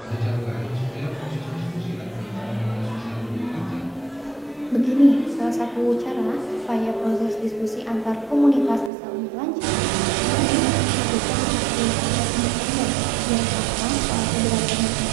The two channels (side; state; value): left; drops out; at 8.9 s